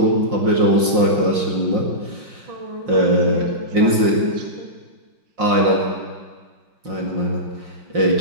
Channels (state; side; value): late; left; 5.6 ms